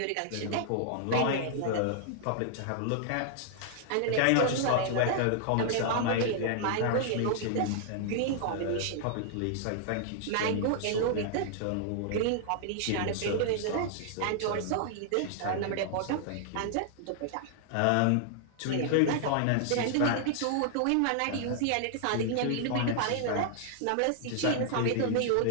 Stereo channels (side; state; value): both; different; correlation -0.01